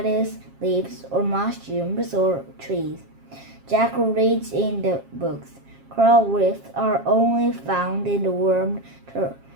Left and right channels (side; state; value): left; late; 7.4 ms